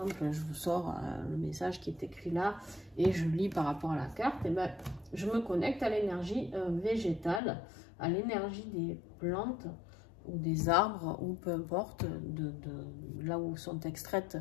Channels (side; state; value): right; drops out; at 7.4 s